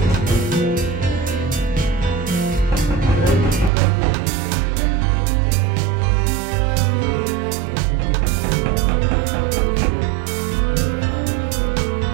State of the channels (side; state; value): left; drops out; at 3.7 s